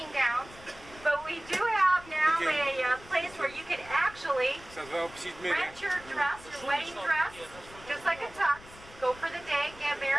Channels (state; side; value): noise; left; rumble, 20 dB below the sound